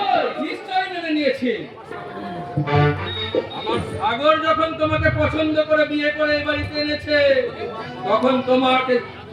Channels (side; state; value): both; identical; correlation 1.00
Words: নিশ্চয় মেনে নিয়েছে। আমার সাগর যখন তোমাকে পছন্দ করে বিয়ে করে এই বাড়িতে এনেছে, তখন তোমাকে